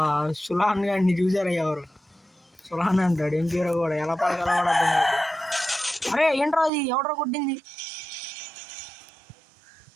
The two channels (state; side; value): drops out; left; at 6.7 s